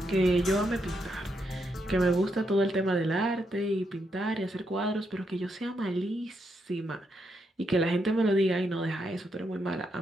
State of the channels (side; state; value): both; normal; correlation 0.80